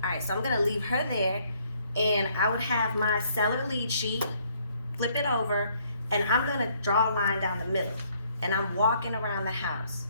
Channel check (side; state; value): both; inverted; correlation -0.66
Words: Alright, so I'm gonna leave her there and I would have my seller lead sheet, flip it over, and I'm gonna draw a line down the middle. And I'm walking around the house,